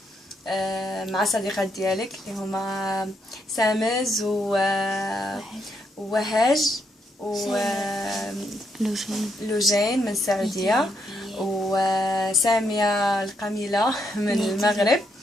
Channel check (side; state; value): both; normal; correlation 0.77